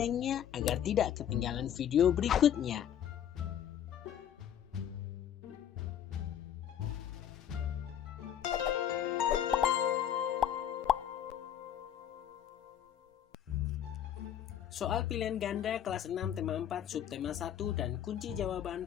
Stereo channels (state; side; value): quieter; right; 9.9 dB